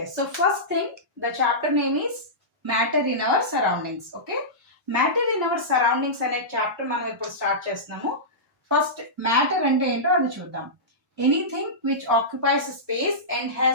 so first thing, the chapter name is matter in our surroundings. Okay, matter in our surroundings అనే chapter మనం ఇప్పుడు start చేస్తున్నాము. First matter అంటే ఏంటో అది చూద్దాం. Anything which occupies space and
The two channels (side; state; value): both; normal; correlation -0.16